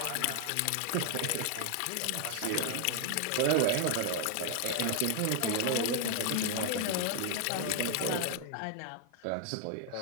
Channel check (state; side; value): different; both; correlation 0.00